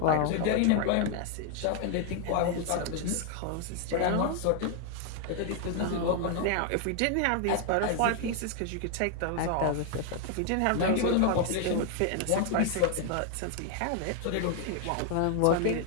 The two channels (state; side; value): different; both; correlation 0.00